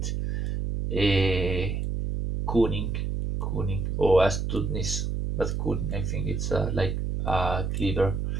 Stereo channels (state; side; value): noise; right; hum, 1 dB below the sound